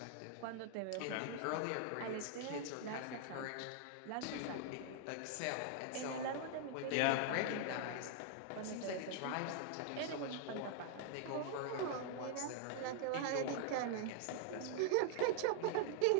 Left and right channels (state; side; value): different; both; correlation 0.00